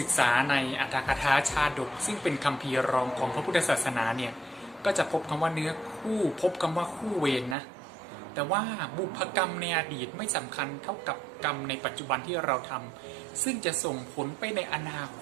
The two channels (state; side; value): drops out; left; at 7.6 s